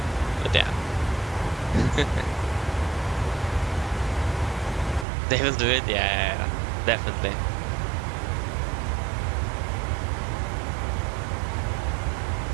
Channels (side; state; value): left; drops out; at 5.1 s